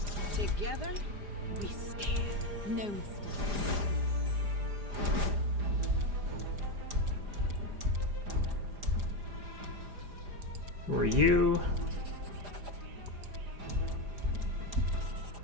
Together, we stand. No mistakes. Who are you?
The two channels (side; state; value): left; late; 4.9 ms